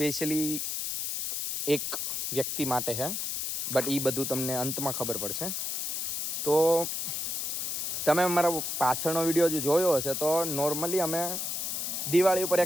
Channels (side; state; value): left; noise; hiss, 2 dB below the sound